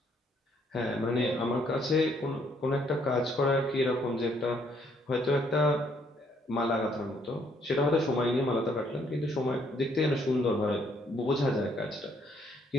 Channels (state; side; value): normal; both; correlation 0.68